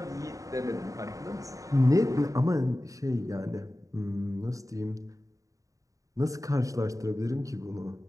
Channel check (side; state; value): left; late; 0.16 ms